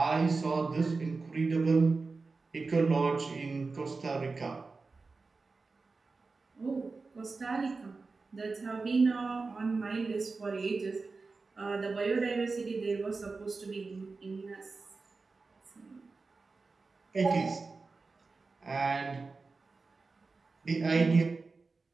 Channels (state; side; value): quieter; left; 4.0 dB